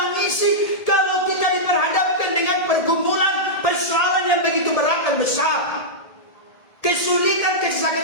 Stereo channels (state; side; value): late; right; 1.7 ms